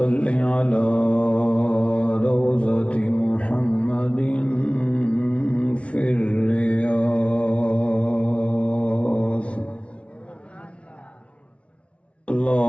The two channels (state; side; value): late; right; 0.061 ms